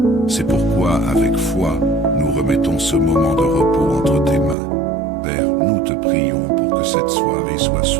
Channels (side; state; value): left; drops out; at 4.5 s